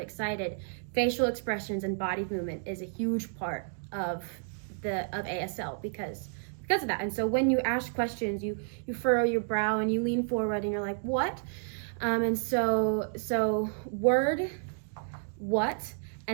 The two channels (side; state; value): left; silent; digital silence